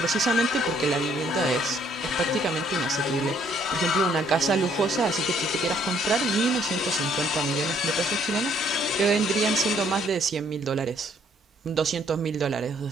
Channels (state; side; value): normal; both; correlation 0.65